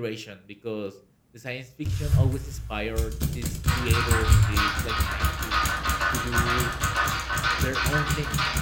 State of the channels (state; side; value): identical; both; correlation 1.00